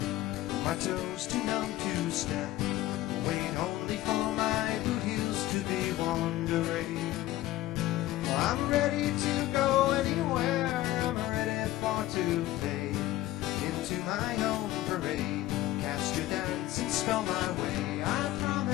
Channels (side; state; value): right; quieter; 15.5 dB